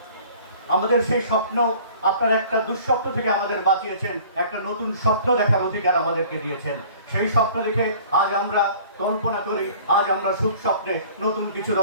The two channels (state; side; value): inverted; both; correlation -0.48